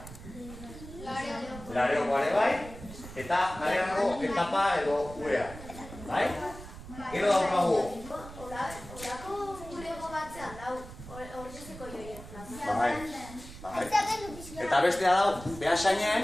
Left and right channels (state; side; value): noise; right; rumble, 14 dB below the sound